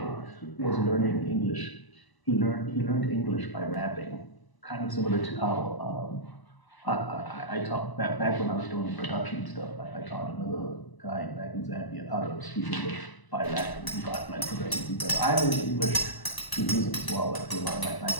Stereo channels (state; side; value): late; right; 1.0 ms